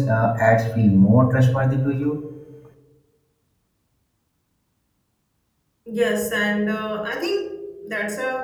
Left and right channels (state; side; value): identical; both; correlation 1.00